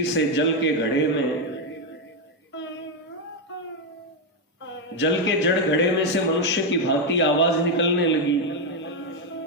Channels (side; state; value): both; normal; correlation 0.04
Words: से जल के जड़ घड़े में से मनुष्य की भांति आवाज निकलने लगी।